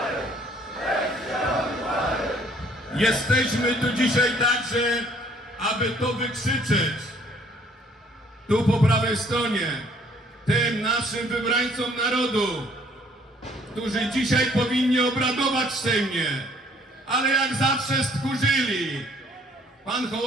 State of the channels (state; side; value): normal; both; correlation 0.60